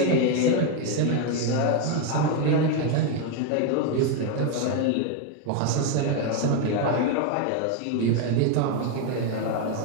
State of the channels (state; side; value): different; both; correlation 0.01